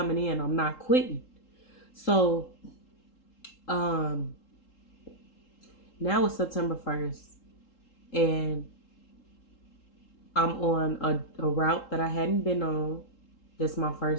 in. I'm not quitting. So, um, now it's September 1st, and I'm on a route that I hadn't been on. This is my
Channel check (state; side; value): late; right; 3.8 ms